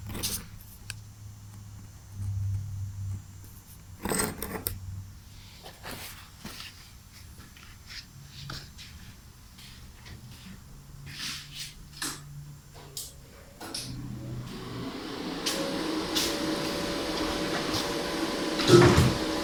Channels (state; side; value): identical; both; correlation 1.00